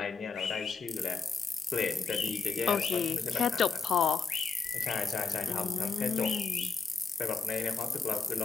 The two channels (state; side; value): quieter; right; 4.6 dB